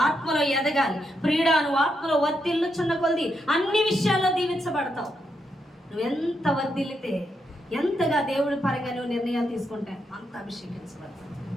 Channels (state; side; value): normal; both; correlation 0.82